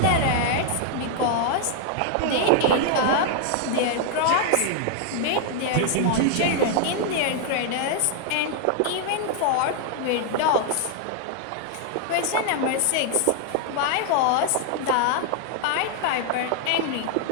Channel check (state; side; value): different; both; correlation 0.00